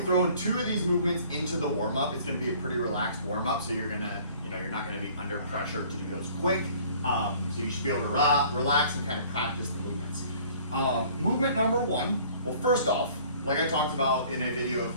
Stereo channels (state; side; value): inverted; both; correlation -0.53